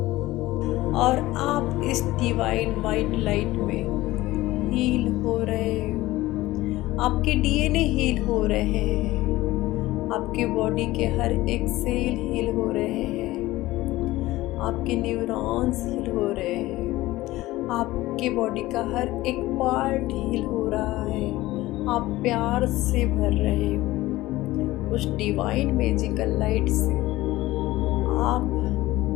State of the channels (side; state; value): right; quieter; 17.7 dB